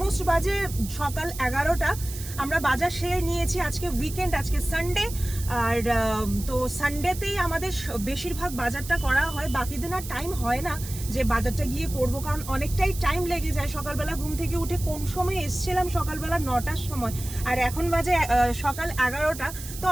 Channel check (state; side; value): noise; right; hiss, 12 dB below the sound